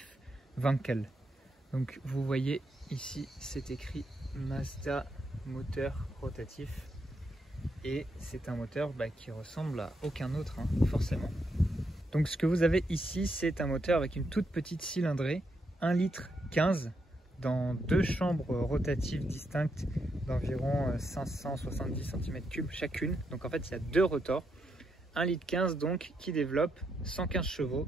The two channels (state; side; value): normal; both; correlation 0.80